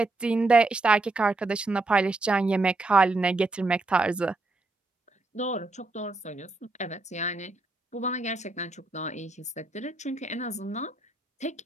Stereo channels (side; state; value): left; quieter; 3.0 dB